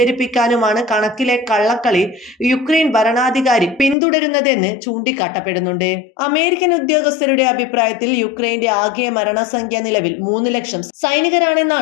കണക്കിലെ കള്ളക്കളി യുക്രൈൻ ഭരണാധികാരി പിന്തുടരുന്നതെന്ന് ചൂണ്ടിക്കാട്ടപ്പെടുന്നുണ്ട്. അമേരിക്കൻ ഉദ്യോഗസ്ഥരുടെ അഭിപ്രായത്തിൽ യുക്രൈന്റെ ആകെ മരണസംഖ്യ നിലവിൽ 3 ലക്ഷം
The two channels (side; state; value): right; drops out; at 4.0 s